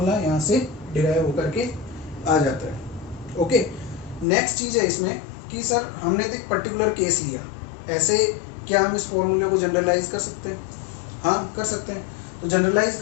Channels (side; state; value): right; drops out; at 4.2 s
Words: यहाँ से डिराइव होकर के आ जाता है। ओके, नेक्स्ट चीज है इसमें कि सर हमने तो एक पर्टिकुलर केस लिया, ऐसे क्या हम इस फॉर्मूले को जनरलाइज कर सकते हैं? हाँ कर सकते हैं। तो जनरलाइज